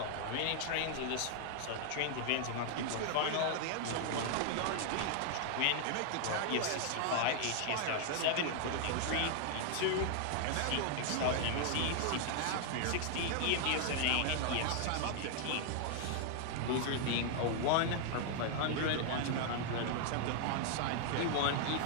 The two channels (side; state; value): both; different; correlation 0.00